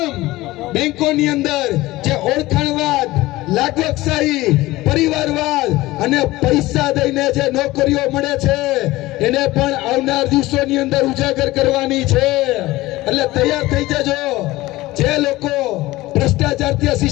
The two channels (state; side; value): quieter; right; 18.5 dB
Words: બેંકોની અંદર જે ઓળખાણવાદ, લાગવકશાહી, પરિવારવાદ અને પૈસા દઈને જે નોકરીઓ મળે છે એને પણ આવનાર દિવસોની અંદર ઉજાગર કરવાની છે. એટલે તૈયાર થઈ જજો. જે લોકો ભ્રષ્ટાચાર